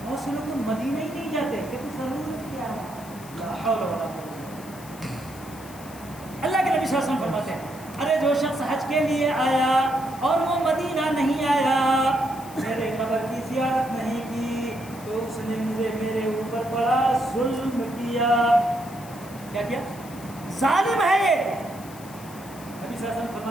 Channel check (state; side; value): noise; left; hiss, 19 dB below the sound